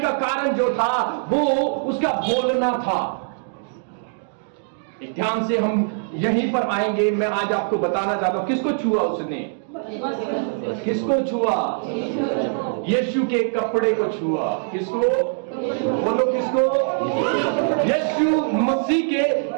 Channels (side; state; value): left; silent; digital silence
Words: कारण जो था वो उसका बोलना था। एक ध्यान से हम यहीं पर आएंगे। मैं आज आपको बताना चाहता हूं, किसको छुआ उसने? किसको छुआ? यीशु के कपड़े को छुआ। किसको? बोलो किसको? यीशु मसीह के